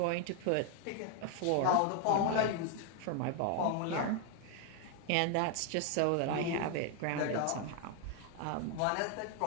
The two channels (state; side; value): different; both; correlation 0.00